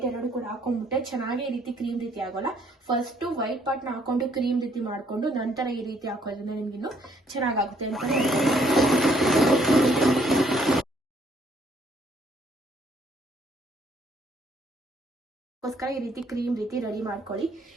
2 ಕೂಡ ಹಾಕೊಂಡ್ಬಿಟ್ಟೆ ಚೆನ್ನಾಗಿ ಈ ರೀತಿ ಕ್ರೀಮ್ ರೀತಿ ಆಗೋಲ್ಲ. ಫಸ್ಟ್ ವೈಟ್ ಪಾರ್ಟ್ ನ ಹಾಕೊಂಡು ಕ್ರೀಮ್ ರೀತಿ ಮಾಡ್ಕೊಂಡು ನಂತರ ಈ ರೀತಿ ಹಾಕೋದ್ರಿಂದ ನಿಮ್ಗಿನ್ನು ಚೆನ್ನಾಗಾಗುತ್ತೆ ಅಂತ ಗೋಸ್ಕರ ಈ ರೀತಿ ಕ್ರೀಮ್ ರೀತಿ ರೆಡಿ ಮಾಡ್ಕೊಳ್ಳಿ.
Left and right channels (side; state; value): both; normal; correlation 0.66